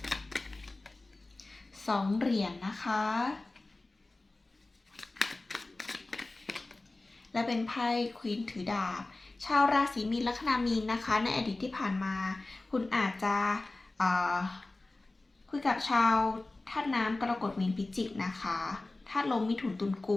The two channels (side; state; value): right; quieter; 3.0 dB